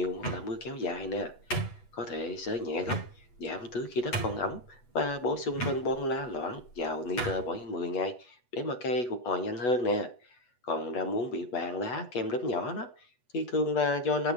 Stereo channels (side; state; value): right; late; 8.2 ms